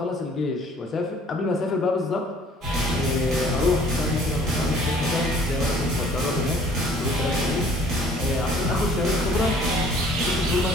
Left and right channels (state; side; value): normal; both; correlation 0.55